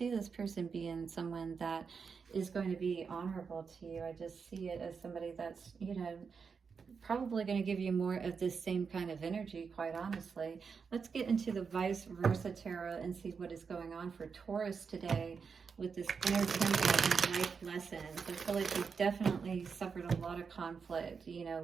this person being someone that is going to be honorable to you. I just see it as somebody that's, you know, probably going to give you more of this same kind of energy, quite honestly. Let's get into the vice versa tarot and see what is going on for Taurus today with this inner temple and life lessons. I feel like you've definitely suffered a lot of conflict, you know,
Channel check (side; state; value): left; quieter; 5.7 dB